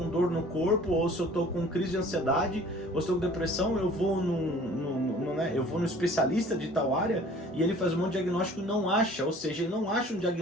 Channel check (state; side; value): normal; both; correlation 0.49